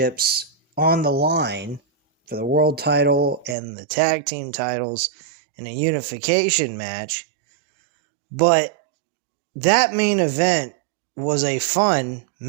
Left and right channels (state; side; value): drops out; left; at 3.6 s